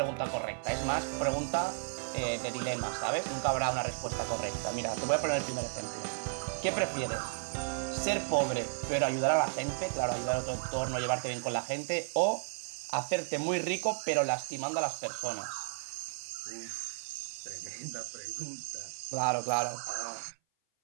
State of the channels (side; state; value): left; silent; 55 dB below the other